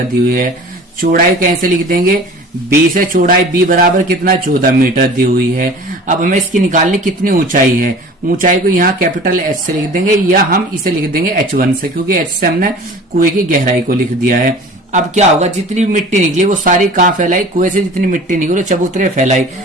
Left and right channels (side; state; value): both; normal; correlation 0.42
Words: दी हुई है। चौड़ाई कैसे लिख देंगे, 20 है चौड़ाई, बी बराबर कितना 14 मीटर दी हुई है। अब हमें इसकी निकालनी कितनी ऊंचाई है, ऊंचाई को यहाँ कैपिटल H से लिख देंगे या हम इसे लिख देंगे H1 से, क्योंकि H से हमने कुएं की गहराई को लिख दिया है। अब क्या होगा, जितनी मिट्टी निकली वो सारी कहाँ फैलाई, कुएं से जितनी मिट्टी निकली चबूतरे फैलाई।